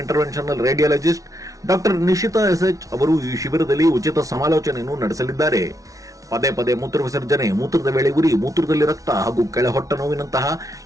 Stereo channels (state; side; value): late; left; 0.17 ms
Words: interventional radiologist doctor Nishita SH ಅವರು ಈ ಶಿಬಿರದಲ್ಲಿ ಉಚಿತ ಸಮಾಲೋಚನೆಯನ್ನು ನಡೆಸಲಿದ್ದಾರೆ. ಪದೇ ಪದೇ ಮೂತ್ರ ವಿಸರ್ಜನೆ, ಮೂತ್ರದ ವೇಳೆ ಉರಿ, ಮೂತ್ರದಲ್ಲಿ ರಕ್ತ ಹಾಗೂ ಕೆಳ ಹೊಟ್ಟೆ ನೋವಿನಂತಹ